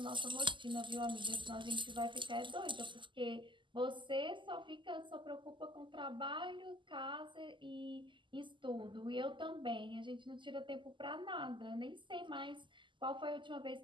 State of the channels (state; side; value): late; left; 0.24 ms